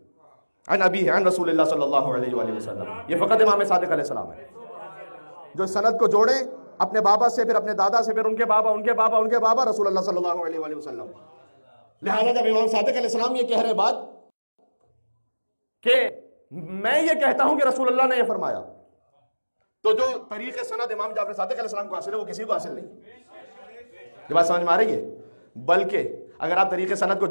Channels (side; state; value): both; inverted; correlation -1.00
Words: अन अबी है, अन रसूलुल्लाह सल्लल्लाहु अलैहि वसल्लम। ये फ़कत इमाम सादिक अलैहिस्सलाम है जो सनद को जोड़े अपने बाबा से, फिर अपने दादा से, फिर उनके बाबा, उनके बाबा, उनके बाबा, रसूलुल्लाह सल्लल्लाहु अलैहि वसल्लम। लिहाजा जब इमाम सादिक अलैहिस्सलाम ये कह रहे बात कि मैं ये कहता हूं कि रसूलुल्लाह ने ये फरमाया, तो जो तरीके सनद इमाम जाफर सादिक अलैहिस्सलाम को हासिल है वो किसी को हासिल नहीं। ये बात समझ में आ रही है? बल्कि अगर आप तरीके सनद को